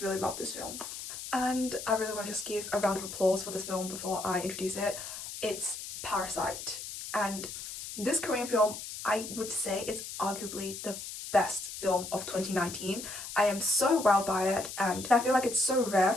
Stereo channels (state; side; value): noise; left; hiss, 9 dB below the sound